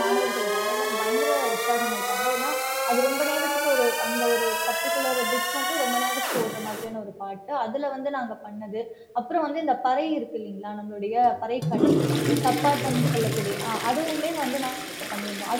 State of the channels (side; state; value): both; identical; correlation 1.00